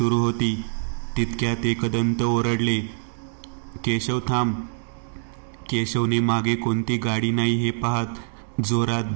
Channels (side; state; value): left; silent; digital silence